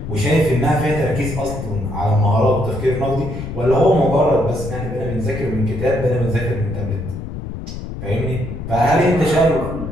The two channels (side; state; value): left; noise; rumble, 8 dB below the sound